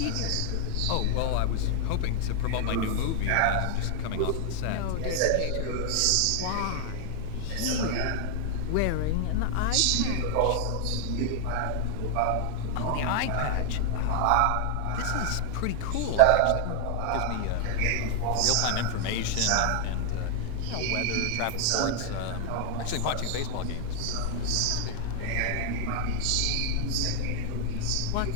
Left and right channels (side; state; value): both; different; correlation 0.00